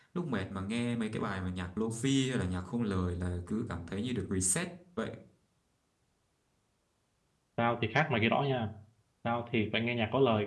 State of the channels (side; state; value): both; identical; correlation 1.00